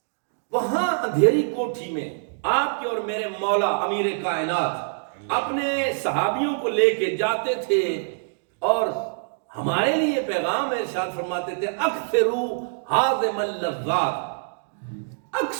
وہاں اندھیری کوٹھی میں آپ کے اور میرے مولا امیر کائنات اپنے صحابیوں کو لے کے جاتے تھے، اور ہمارے لیے پیغام ارشاد فرماتے تھے اکثروا ہاضم اللذات،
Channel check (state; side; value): silent; left; digital silence